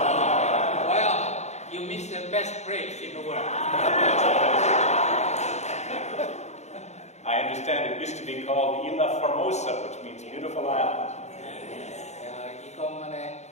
Well, you missed the best place in the world. I understand it used to be called Isla Formosa, which means beautiful island.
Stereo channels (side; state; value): right; late; 0.33 ms